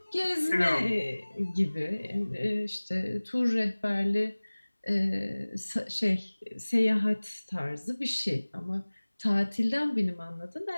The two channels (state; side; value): inverted; both; correlation -1.00